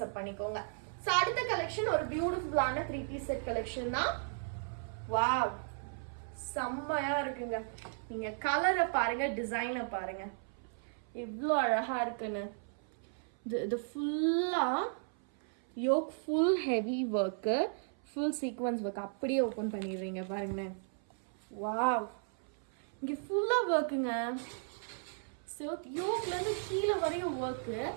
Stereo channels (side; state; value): left; silent; 54 dB below the other